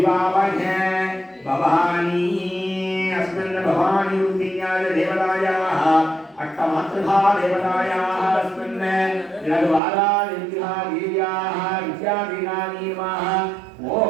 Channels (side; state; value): left; drops out; at 9.8 s